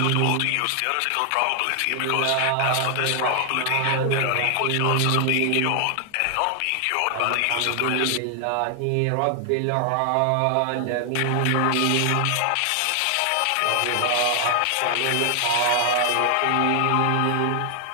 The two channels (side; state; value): both; different; correlation 0.00